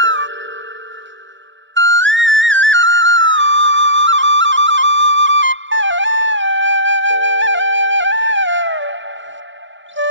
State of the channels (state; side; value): late; left; 0.55 ms